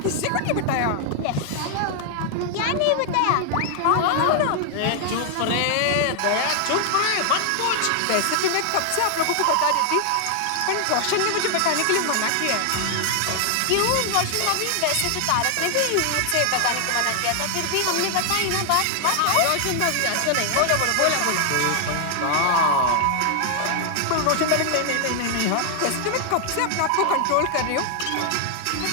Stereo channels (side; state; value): both; different; correlation 0.00